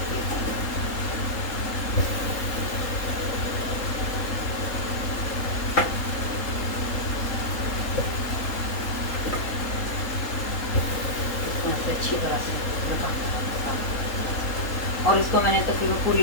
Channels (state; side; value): late; right; 3.8 ms